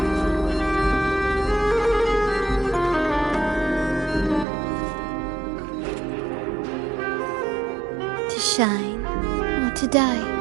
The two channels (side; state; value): left; drops out; at 4.5 s